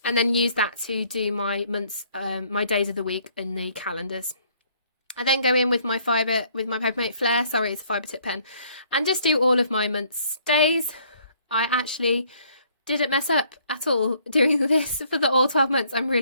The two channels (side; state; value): both; inverted; correlation -0.63